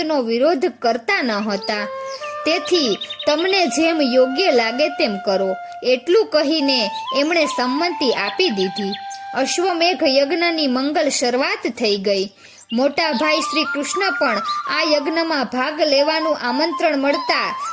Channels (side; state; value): both; identical; correlation 1.00